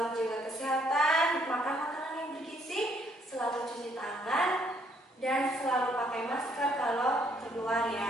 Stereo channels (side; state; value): both; normal; correlation 0.68